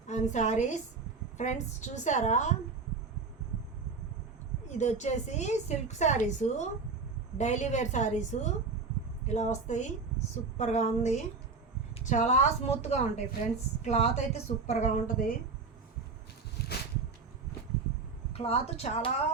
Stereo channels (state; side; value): quieter; left; 4.5 dB